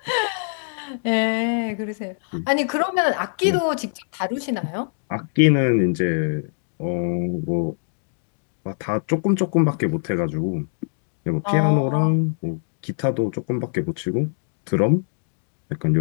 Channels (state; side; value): silent; right; digital silence